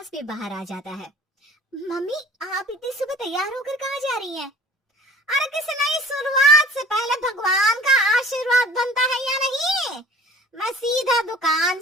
भी बाहर आ जाता है। मम्मी आप इतनी सुबह तैयार होकर कहाँ जा रही हैं? अरे किसी नई शुरुआत से पहले भगवान का आशीर्वाद बनता है या नहीं? मैं सीधा दुकान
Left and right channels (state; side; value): normal; both; correlation 0.47